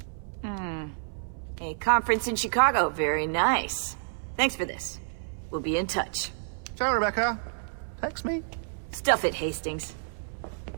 A conference in Chicago, very nice. Thanks for this. We'll be in touch. Ciao, Rebecca. Text me. Stuff it, Hastings.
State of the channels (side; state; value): left; silent; 58 dB below the other